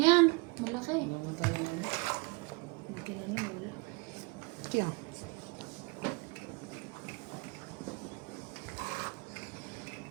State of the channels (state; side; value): quieter; left; 29.3 dB